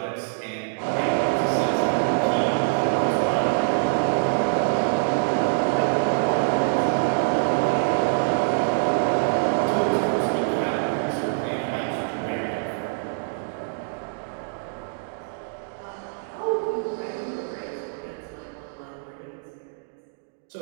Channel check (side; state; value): left; silent; digital silence